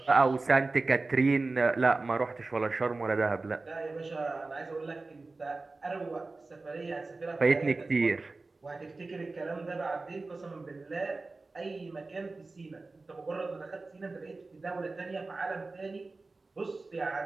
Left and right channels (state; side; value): quieter; left; 3.5 dB